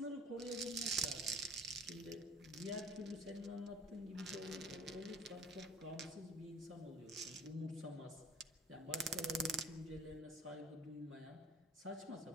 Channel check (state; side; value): normal; both; correlation 0.46